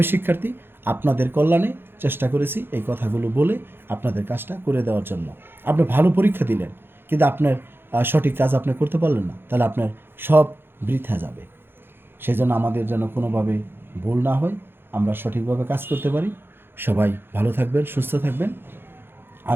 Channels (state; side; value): late; left; 0.10 ms